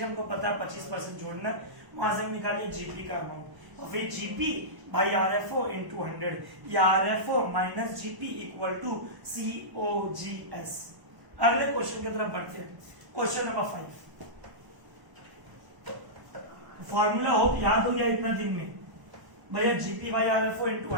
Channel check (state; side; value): late; left; 1.0 ms